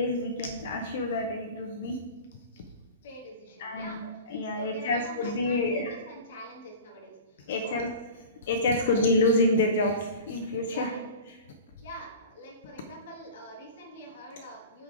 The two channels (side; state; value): both; inverted; correlation -0.36